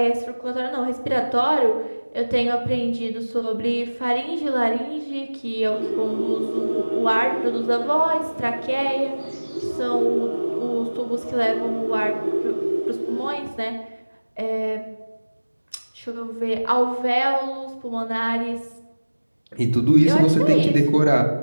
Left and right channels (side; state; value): both; inverted; correlation -1.00